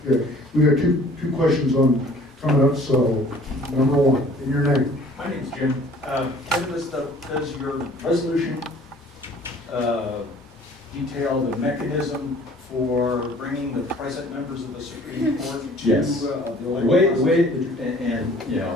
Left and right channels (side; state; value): both; normal; correlation 0.52